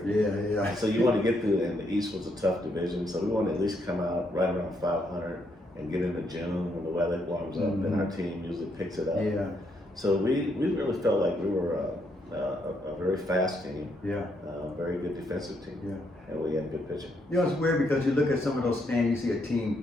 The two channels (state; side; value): normal; both; correlation 0.76